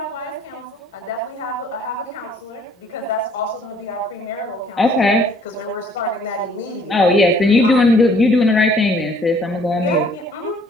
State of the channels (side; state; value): both; normal; correlation 0.59